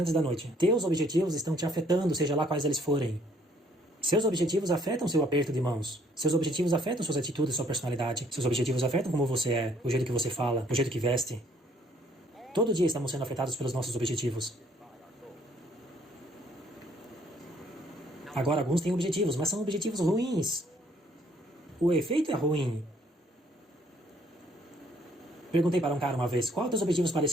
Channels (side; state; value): both; normal; correlation 0.64